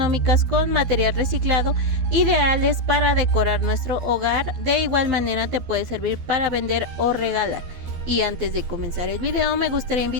con material reciclado, ideales para decorar nuestro hogar. De igual manera te puede servir para vender o regalar. Y antes de comenzar el video me gustaría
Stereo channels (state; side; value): late; left; 12 ms